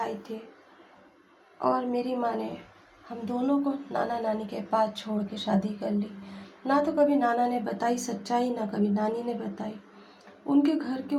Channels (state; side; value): identical; both; correlation 1.00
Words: थे और मेरी माँ ने हम दोनों को नाना-नानी के पास छोड़ के शादी कर ली। ना तो कभी नाना ने बताई सच्चाई, ना कभी नानी ने बताई। उनके घर के